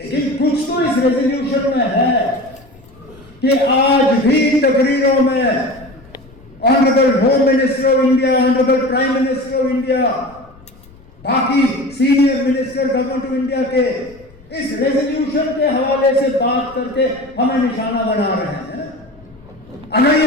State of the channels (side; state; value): left; noise; rumble, 25 dB below the sound